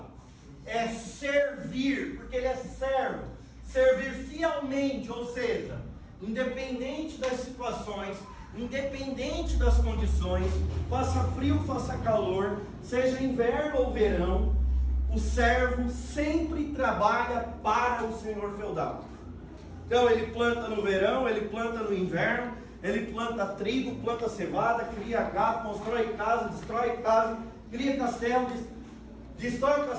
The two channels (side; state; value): both; identical; correlation 1.00